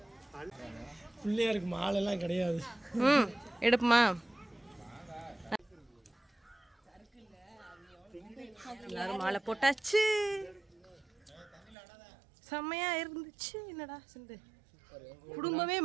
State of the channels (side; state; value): left; drops out; at 11.8 s